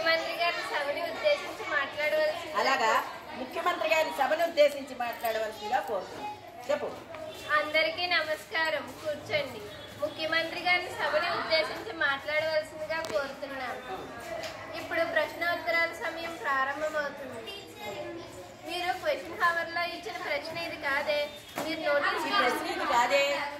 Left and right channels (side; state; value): both; identical; correlation 1.00